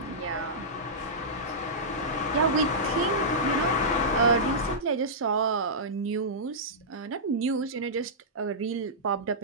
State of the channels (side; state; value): both; normal; correlation -0.15